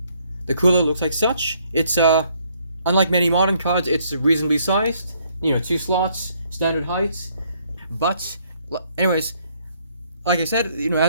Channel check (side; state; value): both; inverted; correlation -0.68